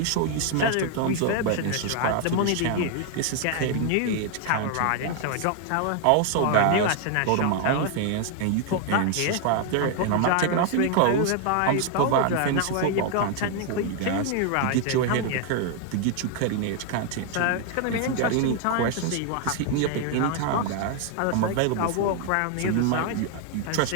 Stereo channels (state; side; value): different; both; correlation 0.00